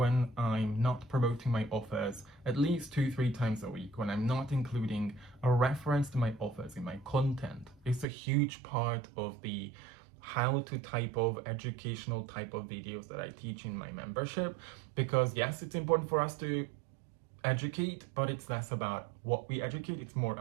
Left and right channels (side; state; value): left; drops out; at 8.1 s